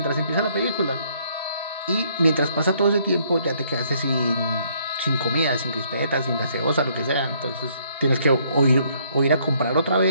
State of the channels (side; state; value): both; inverted; correlation -0.67